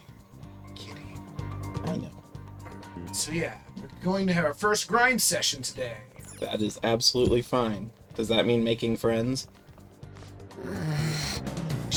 I know. So yeah, we're going to have our first grind session today. That is absolutely fine. Does that mean making friends?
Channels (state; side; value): identical; both; correlation 1.00